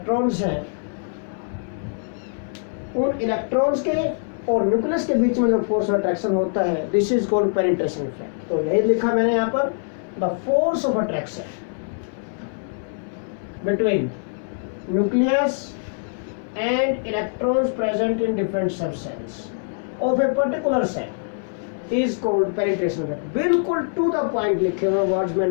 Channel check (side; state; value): right; silent; digital silence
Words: हैं, उन इलेक्ट्रॉन्स के और न्यूक्लियस के बीच में जो फोर्स ऑफ अट्रैक्शन होता है, this is called penetration effect. तो यही लिखा मैंने यहाँ पर, the force of attraction between nucleus and electrons present in different sub shells of a particular shell is called penetration effect. बिल्कुल टू द पॉइंट लिखे हुए वर्ड्स